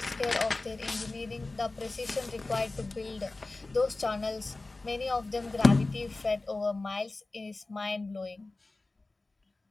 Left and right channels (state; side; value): quieter; right; 3.2 dB